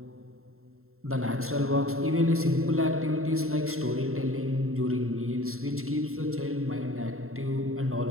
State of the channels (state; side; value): late; left; 0.62 ms